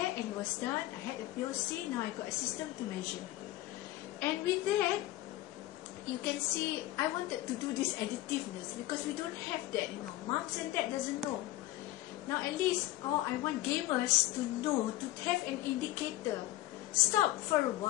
and it was done. I had a POC, now I got a system to measure. And with that, you can see I wanted to do this additiveness because we don't have that, you know. Moms and dad doesn't know. Now at least, I want gamers to know, to have an indicator. Stop for a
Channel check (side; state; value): right; quieter; 16.3 dB